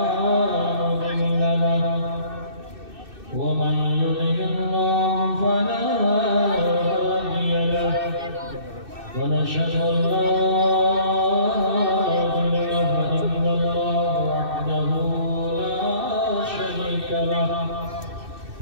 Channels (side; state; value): left; late; 2.6 ms